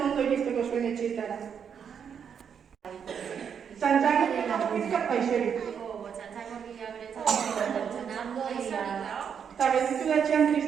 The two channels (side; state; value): left; quieter; 7.5 dB